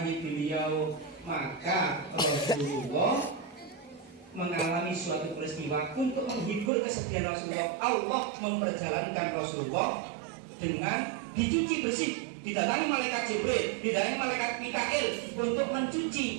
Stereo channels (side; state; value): left; drops out; at 6.7 s